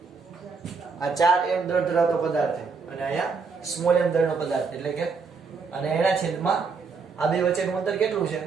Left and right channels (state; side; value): quieter; left; 4.9 dB